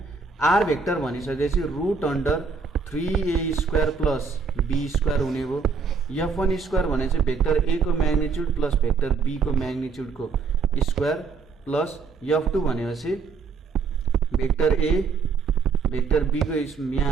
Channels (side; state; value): left; quieter; 5.1 dB